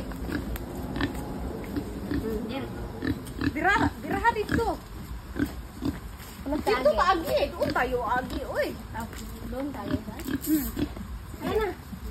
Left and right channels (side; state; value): both; identical; correlation 1.00